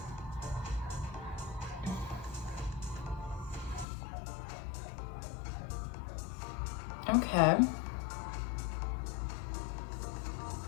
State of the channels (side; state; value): right; drops out; at 3.9 s